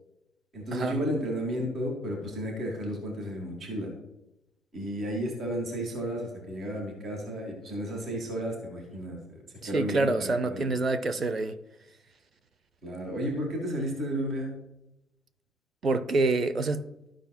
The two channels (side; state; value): both; normal; correlation 0.62